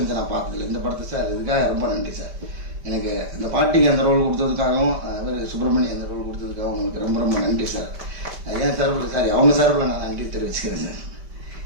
நான் பார்த்ததில்லை. இந்த படத்தை சார் இதுக்காக ரொம்ப நன்றி சார். எனக்கு அந்த பாட்டிக்கு அந்த ரோல் கொடுத்ததுக்காகவும் அவர் சுப்பிரமணியன் அந்த ரோல் கொடுத்ததுக்காகவும் உங்களுக்கு ரொம்ப ரொம்ப நன்றி சார். ஏன் சார்பில் சாரி அவங்க சார்பில் நான் நன்றி தெரிவிச்சுக்கிறேன் சார்.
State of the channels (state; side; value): late; left; 5.1 ms